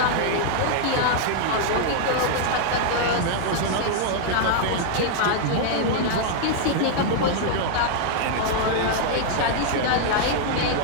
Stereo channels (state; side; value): different; both; correlation 0.00